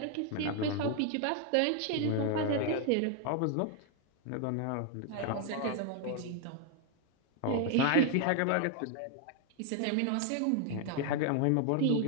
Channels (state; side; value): different; both; correlation 0.00